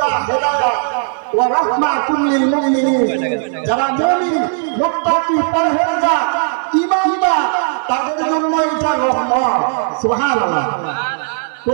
হেদায়েত, ওয়া রাহমাতুল লিল মুমিনিন। যারা মুমিন, মুত্তাকি, পরহেজগার, ঈমানদার, তাদের জন্য এটা রহমত। সুবহানাল্লাহ।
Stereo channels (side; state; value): left; silent; digital silence